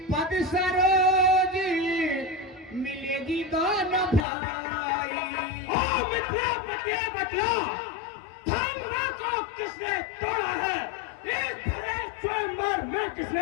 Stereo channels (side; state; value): right; drops out; at 4.2 s